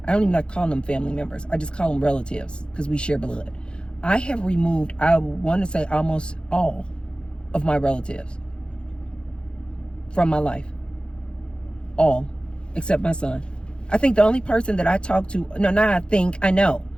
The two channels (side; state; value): right; late; 0.053 ms